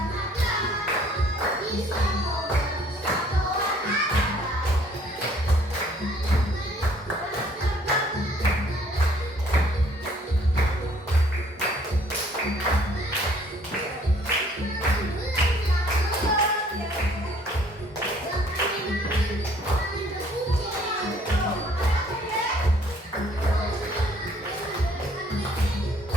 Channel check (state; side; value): normal; both; correlation 0.59